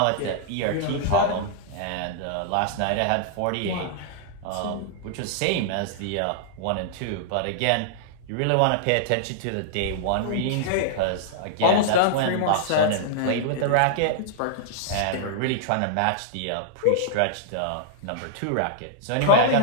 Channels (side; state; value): both; different; correlation -0.01